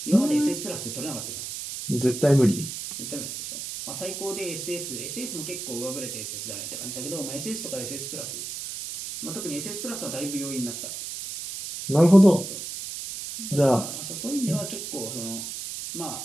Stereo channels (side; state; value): right; noise; hiss, 7 dB below the sound